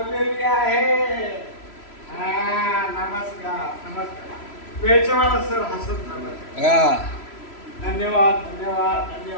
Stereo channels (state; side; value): late; right; 3.0 ms